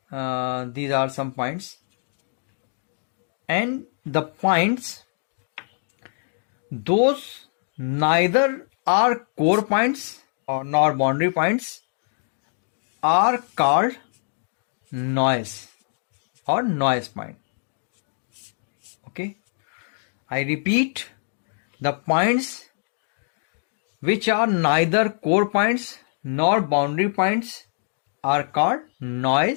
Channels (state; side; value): silent; right; 62 dB below the other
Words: are some points, and the points those neither are core points nor boundary points are called noise or noise point. Okay, I repeat, the points which are neither core points nor boundary points are called